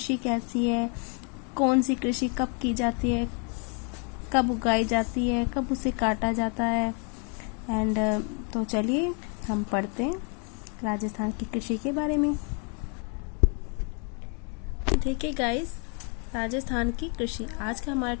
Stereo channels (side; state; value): right; quieter; 37.7 dB